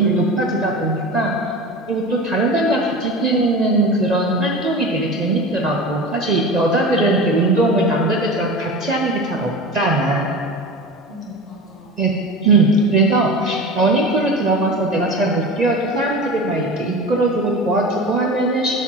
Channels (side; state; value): both; normal; correlation 0.32